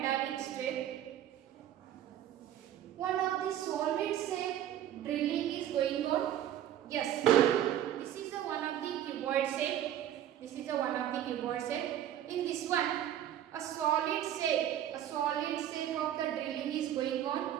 strip, one of the solid shape drilling is going on. Yes, this is one of the cuboid shape. In this one, a solid shape of the drilling is going on.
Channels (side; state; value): left; quieter; 11.4 dB